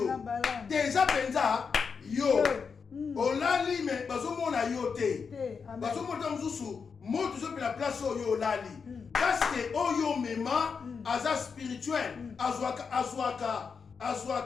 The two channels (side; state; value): right; quieter; 5.7 dB